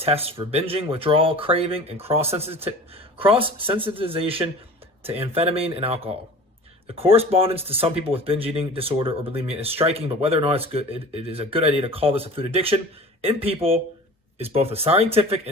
for binging, withdrawal, craving, and cross-sensitization to amphetamine and alcohol. The correspondence to some people with binge eating disorder or bulimia is striking, but whether or not it is a good idea to call this a food addiction in people is both a scientific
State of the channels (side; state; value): both; normal; correlation 0.40